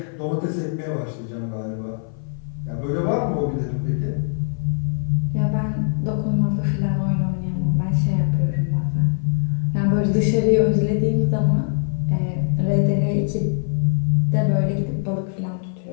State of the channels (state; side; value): silent; right; 59 dB below the other